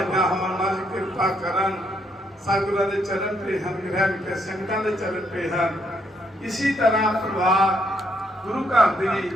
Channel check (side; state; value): both; normal; correlation 0.74